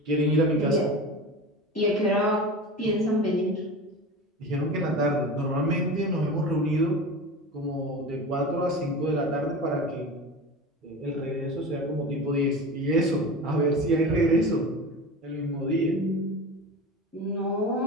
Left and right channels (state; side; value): normal; both; correlation 0.30